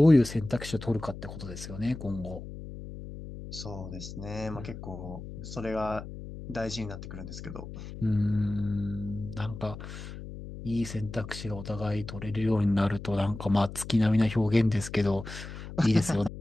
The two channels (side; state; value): left; noise; hum, 11 dB below the sound